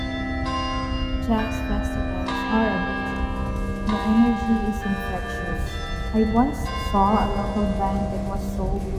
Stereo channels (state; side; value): identical; both; correlation 1.00